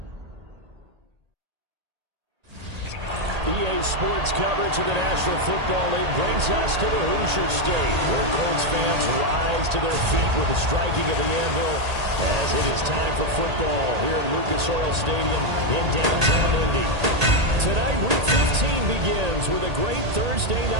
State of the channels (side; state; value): left; late; 1.8 ms